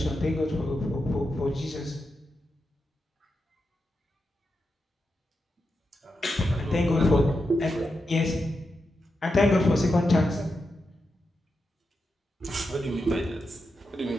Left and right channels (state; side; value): normal; both; correlation 0.87